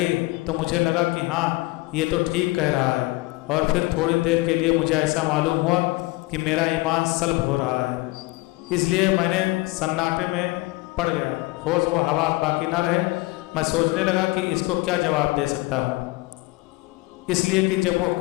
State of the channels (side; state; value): right; quieter; 21.8 dB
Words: تو مجھے لگا کہ ہاں یہ تو ٹھیک کہہ رہا ہے، اور پھر تھوڑی دیر کے لیے مجھے ایسا معلوم ہوا کہ میرا ایمان سلب ہو رہا ہے۔ اس لیے میں نے سناٹے میں پڑ گیا، ہوش و حواس باقی نہ رہے۔ میں سوچنے لگا کہ اس کو کیا جواب دے سکتا ہوں، اس لیے کہ جب وہ